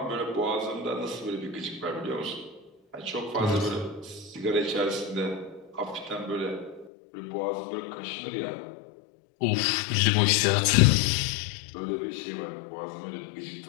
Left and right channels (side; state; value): right; drops out; at 6.9 s